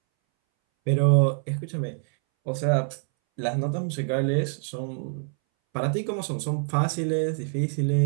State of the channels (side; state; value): left; silent; 61 dB below the other